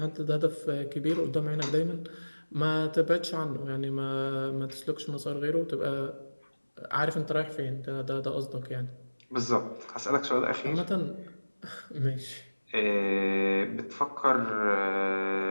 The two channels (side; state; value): both; inverted; correlation -1.00